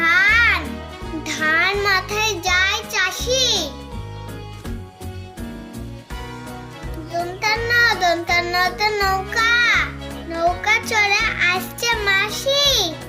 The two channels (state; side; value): identical; both; correlation 1.00